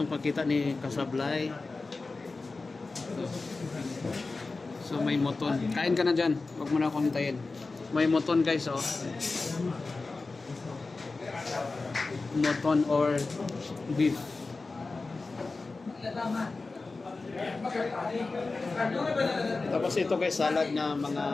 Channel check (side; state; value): right; quieter; 3.7 dB